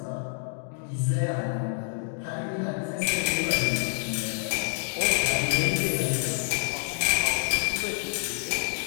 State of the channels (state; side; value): silent; right; digital silence